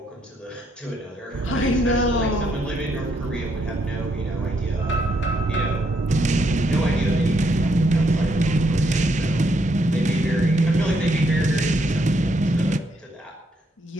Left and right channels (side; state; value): both; normal; correlation 0.75